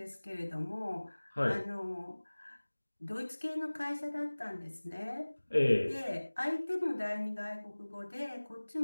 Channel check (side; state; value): both; inverted; correlation -1.00